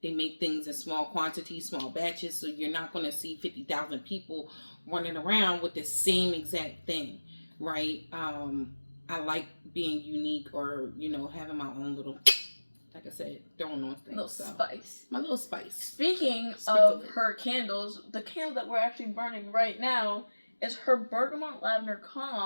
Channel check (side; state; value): both; inverted; correlation -1.00